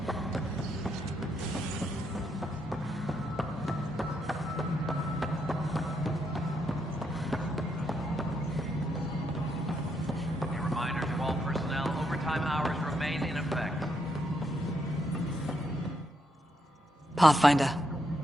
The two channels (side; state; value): both; normal; correlation 0.78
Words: A reminder to all personnel, overtime hours remain in effect. Pathfinder.